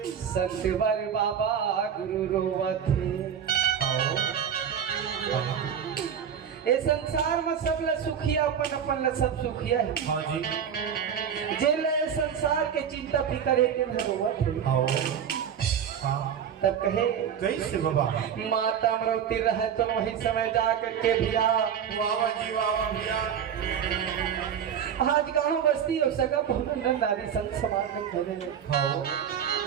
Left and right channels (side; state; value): left; quieter; 8.3 dB